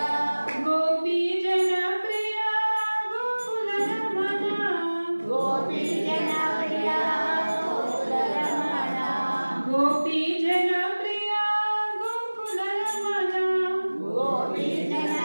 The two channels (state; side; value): inverted; both; correlation -1.00